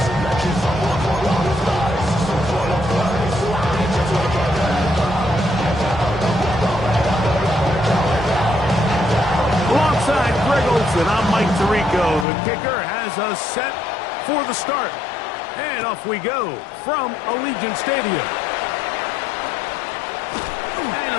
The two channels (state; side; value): drops out; right; at 12.2 s